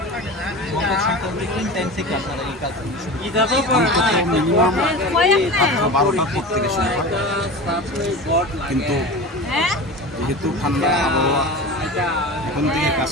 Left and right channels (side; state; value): both; normal; correlation 0.31